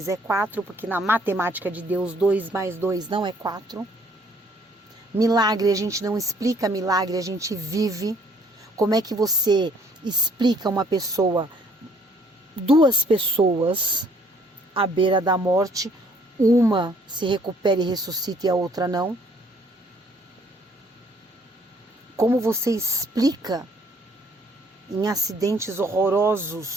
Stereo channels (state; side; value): normal; both; correlation 0.62